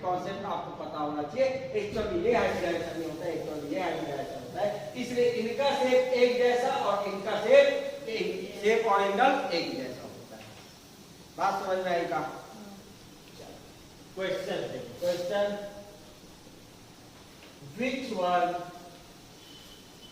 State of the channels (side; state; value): both; identical; correlation 1.00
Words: कॉन्सेप्ट आपको पता होना चाहिए। एक्चुअली ये हाइब्रिडाइजेशन नहीं होता है, एक्चुअली ये हाइब्रिडाइजेशन होता है। इसलिए इनका शेप एक जैसा और इनका शेप और एंगल एक जैसा होता है। बात समझ में आई का? क्वेश्चन देखो, question which one